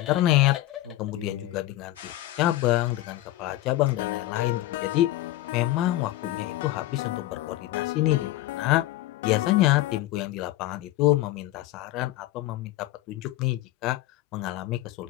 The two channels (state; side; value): quieter; right; 15.8 dB